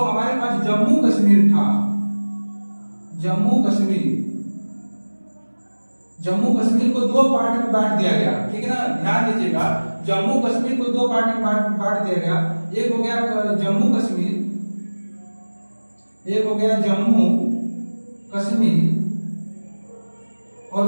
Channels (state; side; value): inverted; both; correlation -1.00